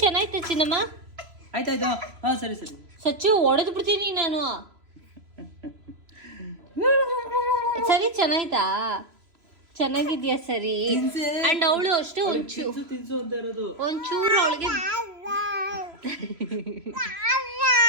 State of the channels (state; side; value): late; left; 3.0 ms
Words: ಚೆನ್ನಾಯ್ತು ಚಿನ್ನಮ್ಮ. ಆಯ್ತಾಯ್ತು. ಹಾಂ ಸರಿ. ಸಚ್ಚು ಹೊಡೆದು ಬಿಡ್ತೀನಿ ನಾನು. ಸರಿ ಚೆನ್ನಾಯ್ತಾ? ಚೆನ್ನಾಗಿದ್ಯಾ? ಸರಿ. ಅಂಡ್ ಅವಳು ಅಷ್ಟು ಒಂಚೂರು